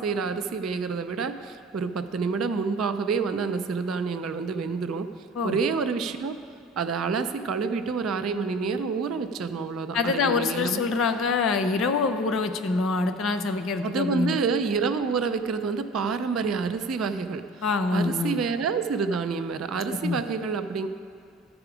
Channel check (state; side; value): normal; both; correlation 0.41